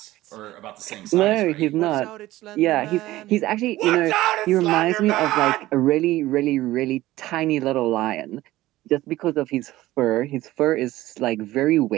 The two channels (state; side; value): quieter; left; 16.5 dB